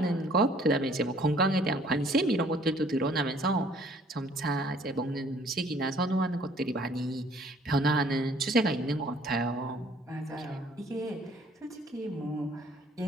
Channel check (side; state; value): both; normal; correlation 0.58